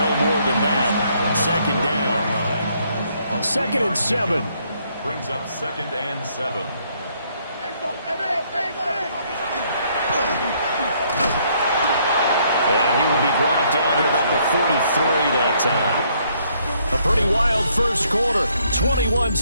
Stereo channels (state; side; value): inverted; both; correlation -0.69